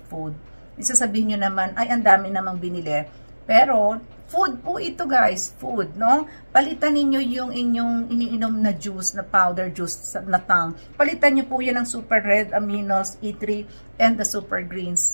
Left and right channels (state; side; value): inverted; both; correlation -1.00